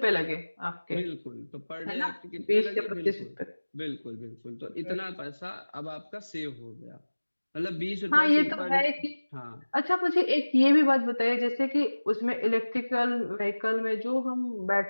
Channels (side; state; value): both; inverted; correlation -1.00